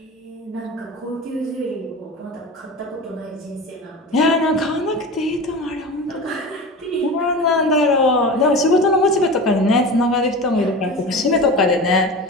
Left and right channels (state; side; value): normal; both; correlation 0.31